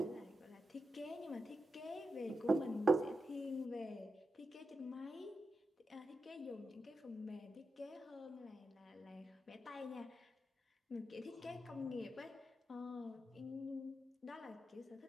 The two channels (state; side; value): normal; both; correlation 0.88